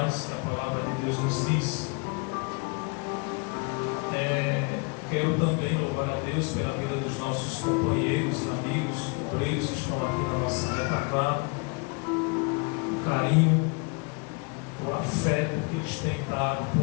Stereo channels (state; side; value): quieter; right; 32.3 dB